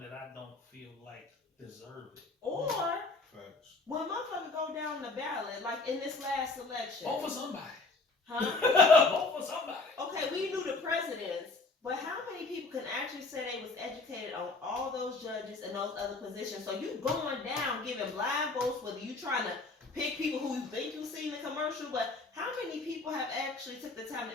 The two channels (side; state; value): right; quieter; 3.6 dB